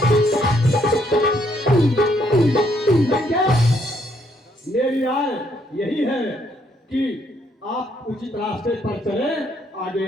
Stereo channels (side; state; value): both; normal; correlation 0.71